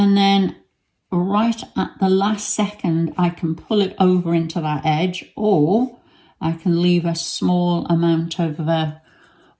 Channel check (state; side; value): identical; both; correlation 1.00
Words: then right at the last second I can pull it over into that edge, or I can leave a small amount of